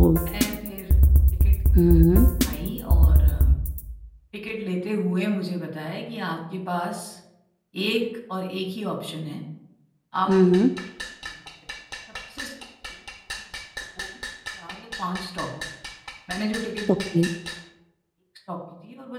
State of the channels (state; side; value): identical; both; correlation 1.00